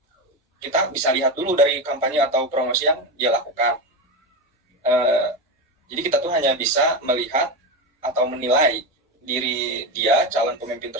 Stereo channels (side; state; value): both; normal; correlation 0.16